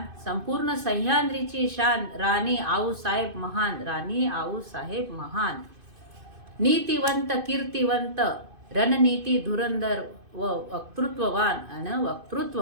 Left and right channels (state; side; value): late; left; 2.5 ms